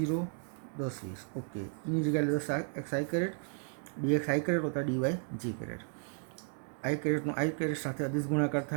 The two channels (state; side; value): silent; left; 55 dB below the other